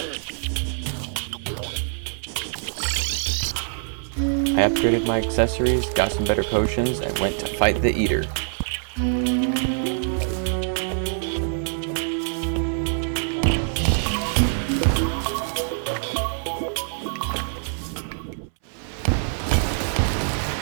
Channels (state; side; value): silent; left; 61 dB below the other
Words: I upgraded my accessories, got some better potions, and went to fight the Eater.